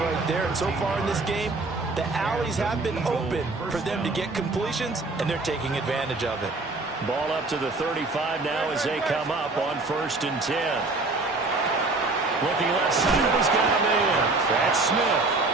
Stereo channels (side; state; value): left; quieter; 3.4 dB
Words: there. And so far in this game, the alleys have been open for them to get completions, and they're taking advantage of it. Ball up to the 35 now as they come up on 1st and 10. Looking left side, he's got a man. That's Smith.